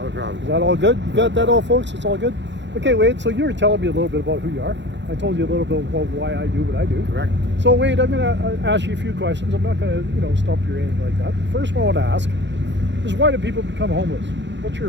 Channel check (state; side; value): late; left; 0.52 ms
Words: problem. Is that all good? You got that all, folks? It's all good? Okay, Wade, so you were telling me a little bit about who you are. I told you a little bit about why I do what I do. Correct. So, Wade, I'm going to ask you a few questions. I'm not going to, stump you or anything like that. First one I want to ask is why do people become homeless? What's your